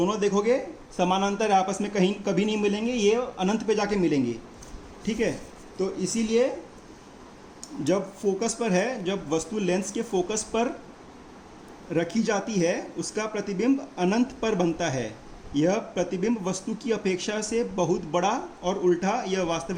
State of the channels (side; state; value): both; identical; correlation 1.00